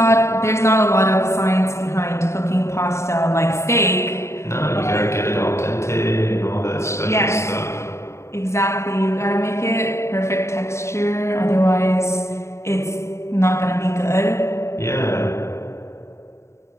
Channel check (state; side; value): late; right; 0.13 ms